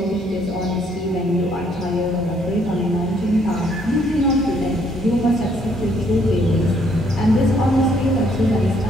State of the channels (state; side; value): normal; both; correlation 0.67